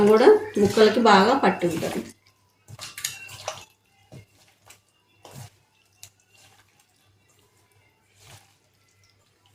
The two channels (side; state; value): both; identical; correlation 1.00